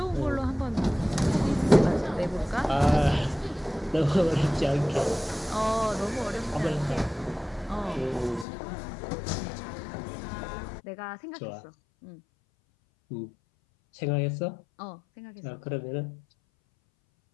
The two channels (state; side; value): drops out; right; at 8.5 s